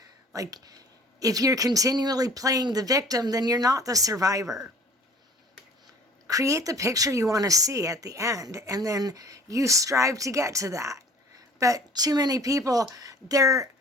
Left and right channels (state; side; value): normal; both; correlation 0.49